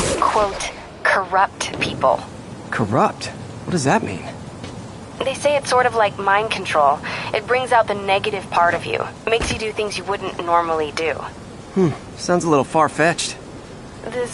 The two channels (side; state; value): both; identical; correlation 1.00